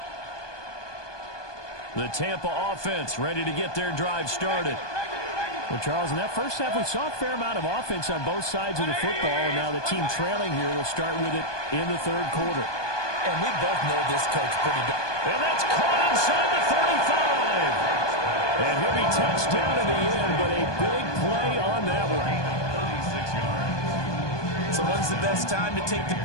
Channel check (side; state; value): right; late; 1.2 ms